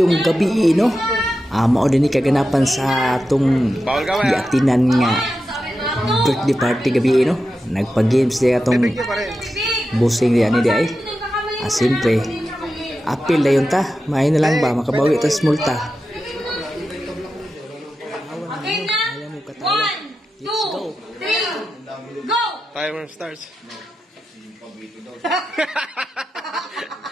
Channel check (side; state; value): both; normal; correlation 0.90